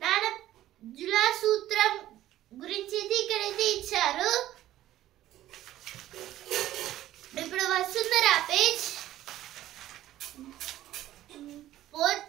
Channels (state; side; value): quieter; left; 13.8 dB